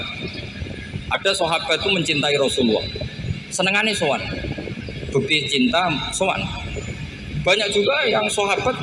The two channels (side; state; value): both; identical; correlation 1.00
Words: ada sahabat itu mencintai Rasulullah, senengannya sowan, bukti cinta sowan. Banyak juga yang sahabat